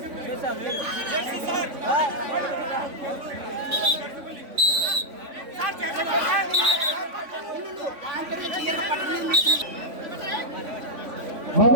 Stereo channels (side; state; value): left; late; 3.5 ms